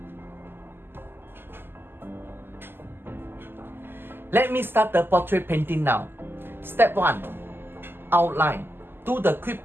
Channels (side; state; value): left; late; 0.10 ms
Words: Let me start the portrait painting now. Step 1. Outline. Do the quick